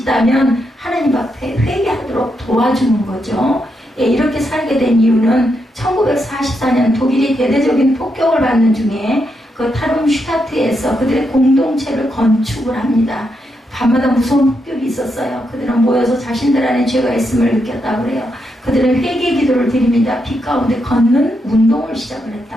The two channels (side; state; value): both; normal; correlation 0.82